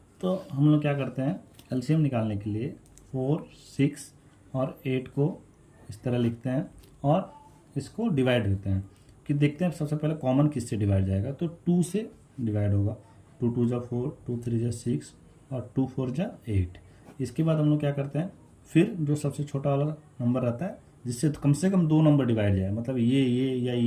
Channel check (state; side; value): identical; both; correlation 1.00